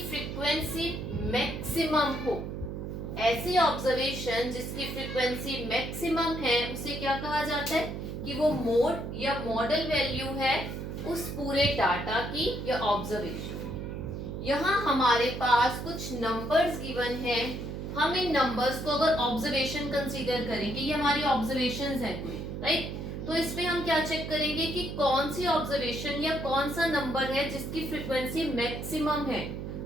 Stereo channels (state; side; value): noise; right; hum, 6 dB below the sound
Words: फ्रीक्वेंसी मैक्सिमम हो, ऐसी ऑब्जर्वेशन जिसकी फ्रीक्वेंसी मैक्सिमम है, उसे क्या कहा जाता है कि वो मोड या मॉडल वैल्यू है उस पूरे डाटा की या ऑब्जर्वेशन। यहाँ हमारे पास कुछ नंबर्स गिवन है, हम इन नंबर्स को अगर ऑब्जर्वेशन कंसीडर करेंगे, ये हमारी ऑब्जर्वेशंस हैं कोई, राइट। तो इसमें हम क्या चेक करेंगे कि कौन सी ऑब्जर्वेशन या कौन सा नंबर है जिसकी फ्रीक्वेंसी मैक्सिमम है,